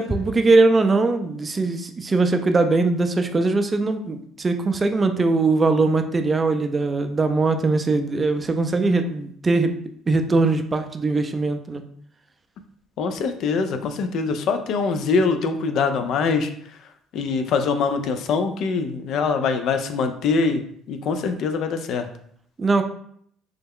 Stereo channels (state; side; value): normal; both; correlation 0.72